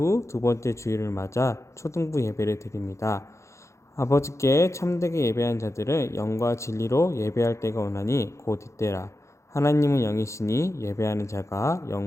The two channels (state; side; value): late; right; 0.14 ms